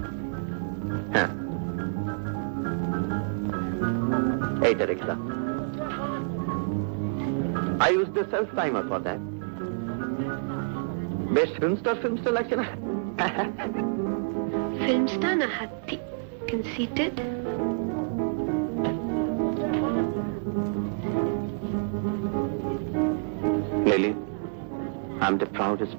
হ্যাঁ এইটা দেখলাম। I use the self timer for that. বেশ ফিল্ম স্টার লাগছে না? ফিল্ম স্টার না হাতি? Conceited? Lily, I'm the proudest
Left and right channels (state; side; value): quieter; left; 38.0 dB